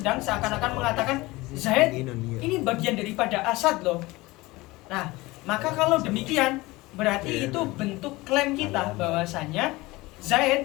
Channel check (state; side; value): quieter; right; 21.0 dB